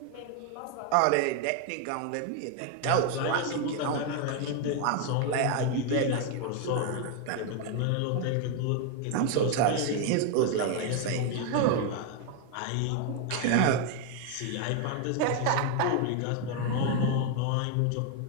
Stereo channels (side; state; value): both; different; correlation 0.01